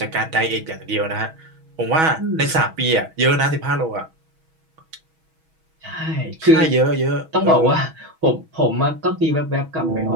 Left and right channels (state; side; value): late; left; 6.2 ms